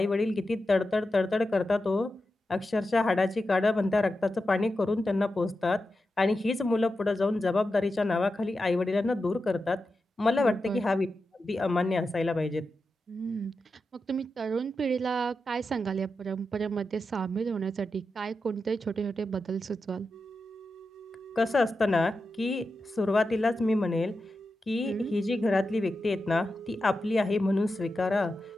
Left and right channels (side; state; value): both; normal; correlation 0.90